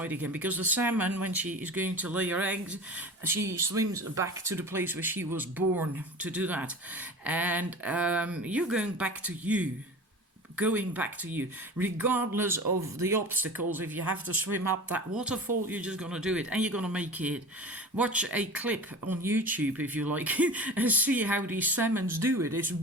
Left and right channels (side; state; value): both; normal; correlation 0.35